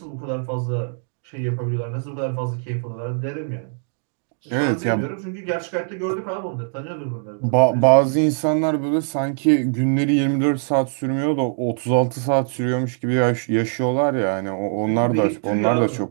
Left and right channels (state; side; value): silent; left; 64 dB below the other